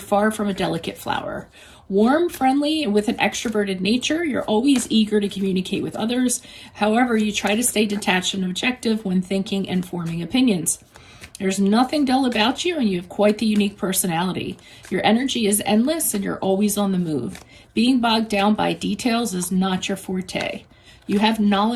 from a delicate flower. Warm, friendly, and with an extroverted nature, you're always eager to communicate with others. However, you try to stay detached and objective when thinking and forming opinions. There's nothing dull about you, and you have quite the unique personality. Your energy is endless, and you're always on the move. Being bogged down by details is not your forte. You have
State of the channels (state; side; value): identical; both; correlation 1.00